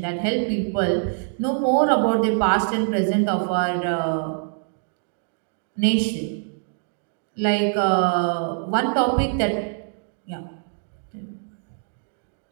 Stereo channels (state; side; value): silent; left; digital silence